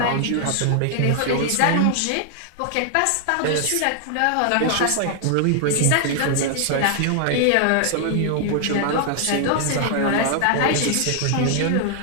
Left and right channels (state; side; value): different; both; correlation 0.00